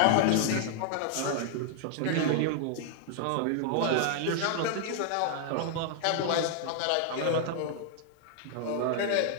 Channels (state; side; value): different; both; correlation 0.00